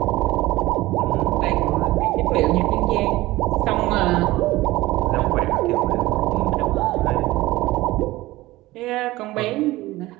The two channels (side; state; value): left; quieter; 18.3 dB